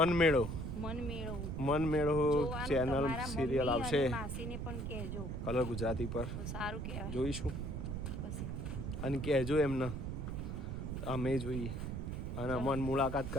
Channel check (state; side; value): noise; right; rumble, 4 dB below the sound